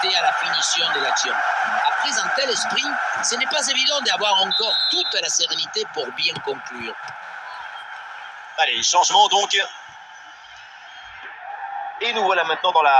à la finition de l'action. Après un tel esprit, ce n'est pas évident d'avoir encore toute la sérénité pour bien conclure. Allez, changement donc. Et nous voilà maintenant dans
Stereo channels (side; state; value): both; identical; correlation 1.00